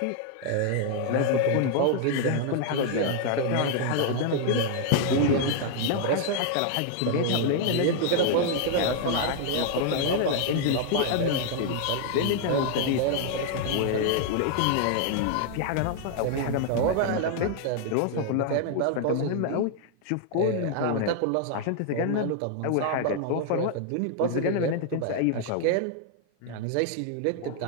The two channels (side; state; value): both; different; correlation 0.00